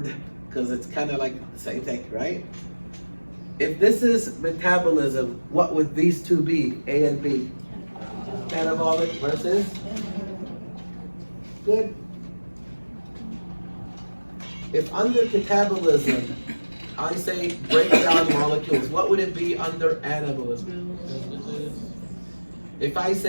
because it's kind of like the same thing, right? If this is metabolism, what would these two be, A and B? Catabolic versus? Good. If under catabolism, I say break down molecules, what would it be under anabolism? If I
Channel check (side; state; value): both; inverted; correlation -1.00